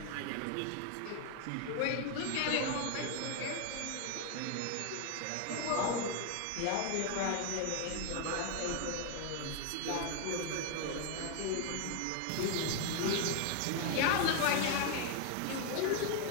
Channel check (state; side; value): different; both; correlation 0.00